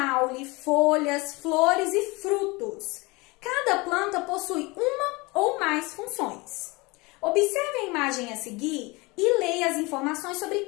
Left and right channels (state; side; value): quieter; right; 25.0 dB